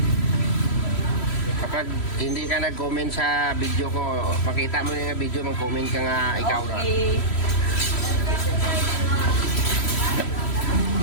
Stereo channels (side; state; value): right; late; 3.1 ms